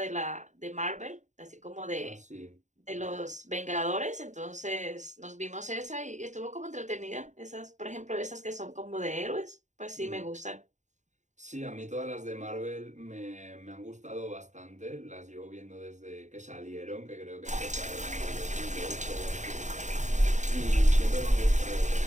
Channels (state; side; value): late; left; 0.35 ms